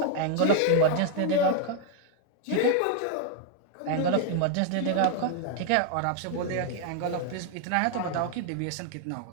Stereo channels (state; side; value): different; both; correlation 0.00